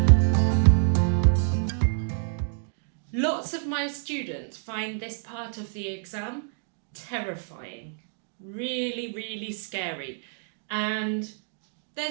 Lots of my students find this part of the exam terrifying, really scary, and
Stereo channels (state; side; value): silent; left; digital silence